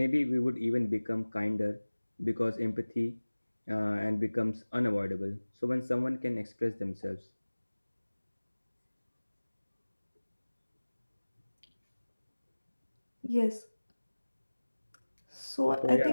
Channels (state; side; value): inverted; both; correlation -1.00